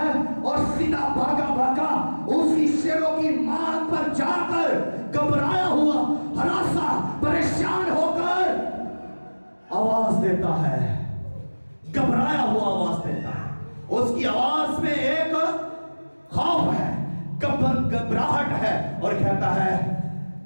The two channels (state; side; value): inverted; both; correlation -1.00